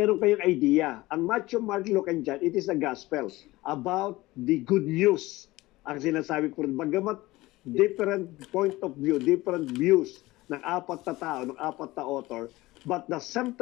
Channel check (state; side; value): quieter; right; 19.3 dB